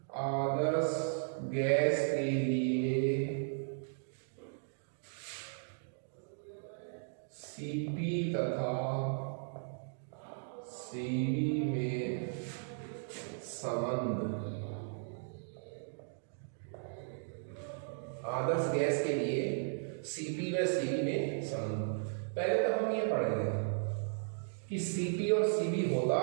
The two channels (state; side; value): silent; left; digital silence